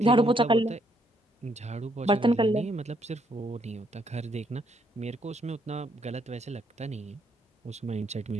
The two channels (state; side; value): normal; both; correlation 0.72